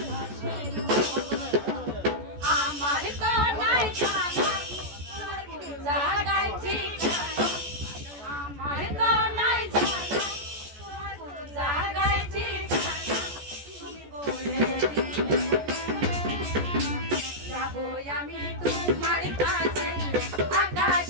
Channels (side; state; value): left; late; 14 ms